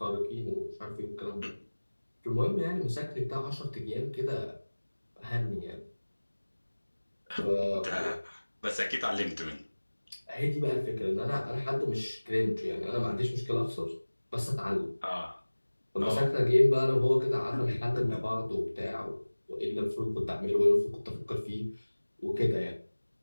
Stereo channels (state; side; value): inverted; both; correlation -1.00